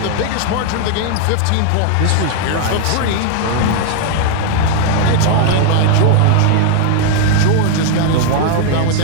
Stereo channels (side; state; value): both; different; correlation 0.00